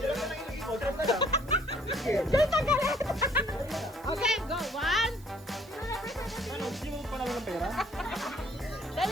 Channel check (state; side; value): noise; right; hiss, 24 dB below the sound